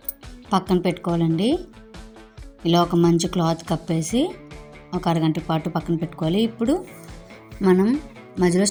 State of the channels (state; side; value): identical; both; correlation 1.00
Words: పక్కన పెట్టుకోవాలండి. ఇలా ఒక మంచి క్లాత్ కప్పేసి ఒక అరగంట పాటు పక్కన పెట్టుకోవాలి. ఇప్పుడు మనం మధ్యలో